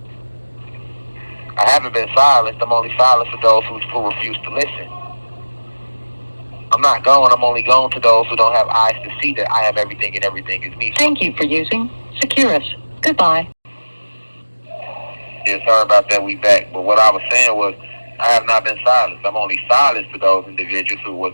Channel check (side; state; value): both; inverted; correlation -1.00